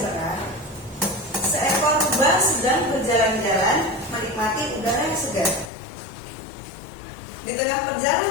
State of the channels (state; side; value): drops out; right; at 5.7 s